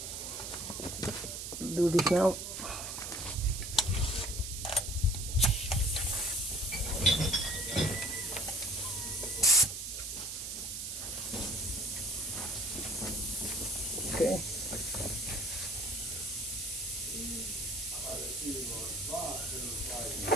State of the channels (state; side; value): noise; right; hiss, 6 dB below the sound